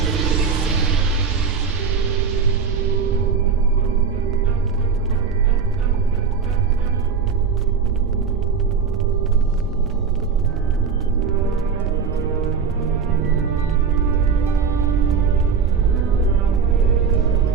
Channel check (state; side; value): quieter; left; 5.9 dB